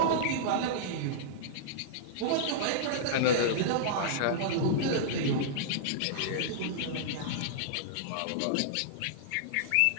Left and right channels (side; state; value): both; different; correlation -0.02